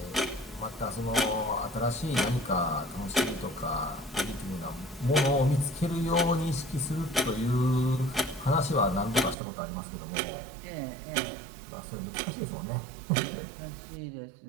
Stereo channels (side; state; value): left; drops out; at 9.3 s